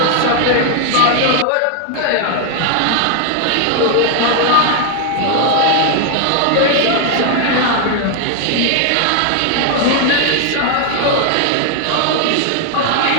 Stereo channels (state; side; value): different; both; correlation 0.00